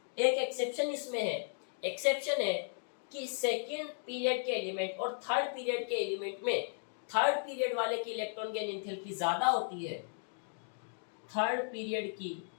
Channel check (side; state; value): right; silent; digital silence